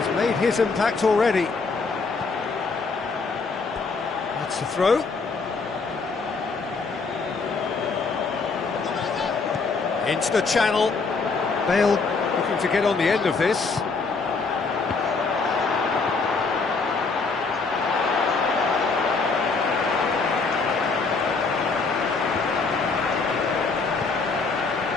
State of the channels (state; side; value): quieter; right; 4.4 dB